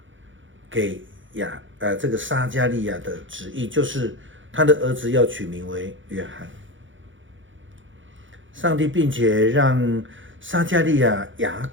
给这个撒迦利亚的旨意，就是他的儿子要取名为约翰。上帝并且让撒迦利亚哑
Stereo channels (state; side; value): late; left; 0.56 ms